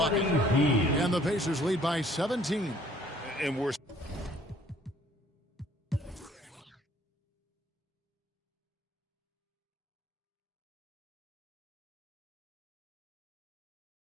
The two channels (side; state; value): both; normal; correlation 0.59